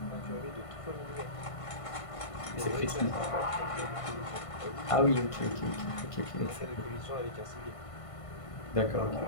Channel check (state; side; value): late; right; 1.5 ms